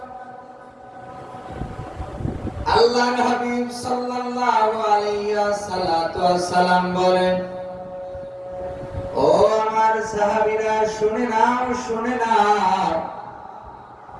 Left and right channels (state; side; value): identical; both; correlation 1.00